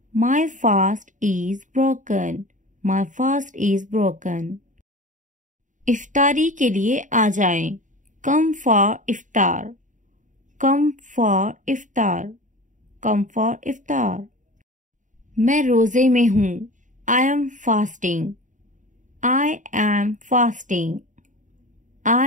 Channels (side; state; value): left; late; 0.37 ms